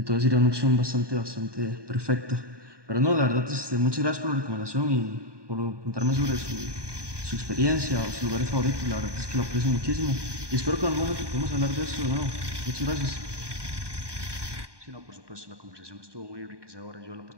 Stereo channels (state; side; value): late; left; 1.2 ms